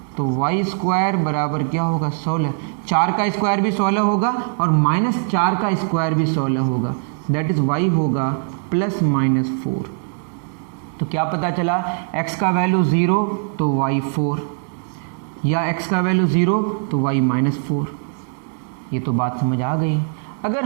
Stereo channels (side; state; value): left; silent; digital silence